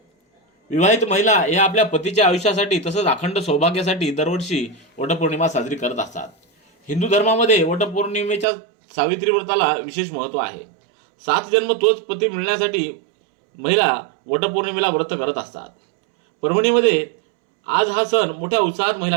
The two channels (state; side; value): drops out; left; at 8.5 s